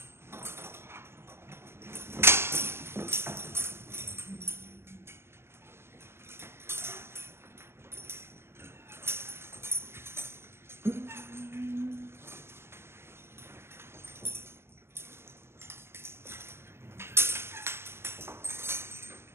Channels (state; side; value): late; left; 0.12 ms